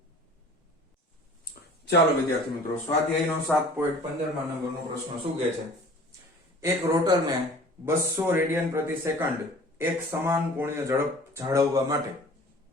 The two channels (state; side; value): normal; both; correlation 0.46